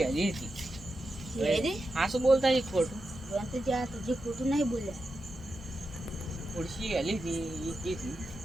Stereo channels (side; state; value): both; normal; correlation 0.89